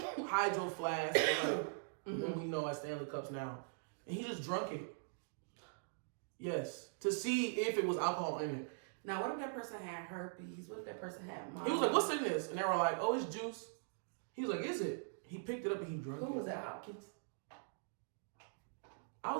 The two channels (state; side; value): silent; left; digital silence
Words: flask, what we know as Stanley Cups now, and he just drunk it. Yes, to see if it was alcohol in it. Now, what if that person had herpes? What if that person had He was like, "What's in this?" And they were like, "Oh, it's juice." He was like, "Is it?" He picked it up and he drank it. Who was that, Hopkins? I